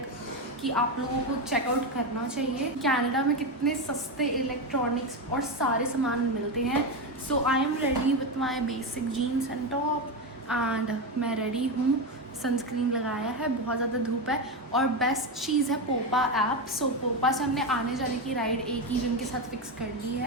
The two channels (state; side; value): normal; both; correlation 0.13